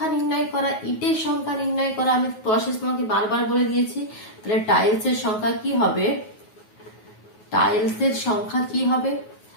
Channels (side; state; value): right; late; 9.4 ms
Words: নির্ণয় করা, ইটের সংখ্যা নির্ণয় করা আমি প্রসেস তোমাকে বারবার বলে দিয়েছি। তাহলে টাইলসের সংখ্যা কি হবে, টাইলসের সংখ্যা কি হবে,